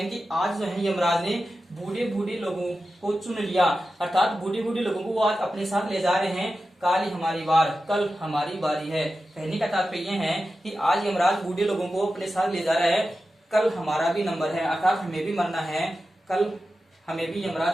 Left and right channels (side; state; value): both; normal; correlation 0.92